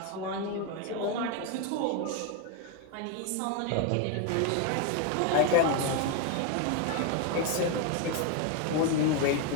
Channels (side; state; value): both; different; correlation 0.01